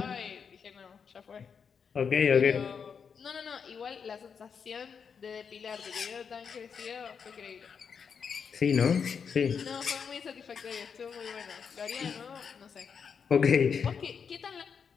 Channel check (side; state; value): right; quieter; 6.4 dB